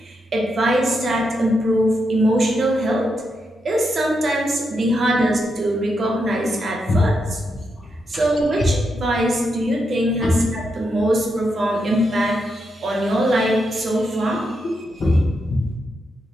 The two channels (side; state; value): both; normal; correlation 0.83